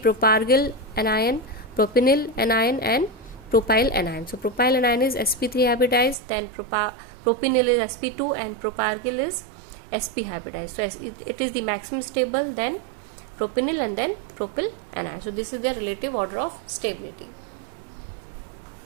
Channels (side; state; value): left; drops out; at 6.2 s